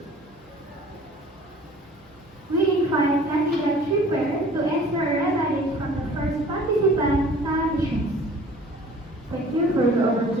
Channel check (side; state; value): both; normal; correlation 0.49